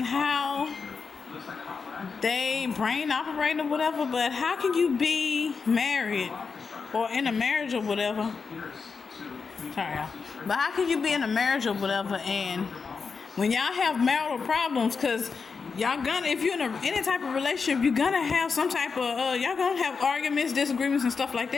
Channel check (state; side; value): quieter; right; 5.2 dB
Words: how they brain operate or whatever. But how can you be married or in a marriage or whatever? Sorry, y'all. But how can you be in a marriage or whatever, and when y'all have marital problems, because y'all gonna, if you're in any type of relationship, you're gonna have some type of y'all gonna have arguments, disagreements, and stuff like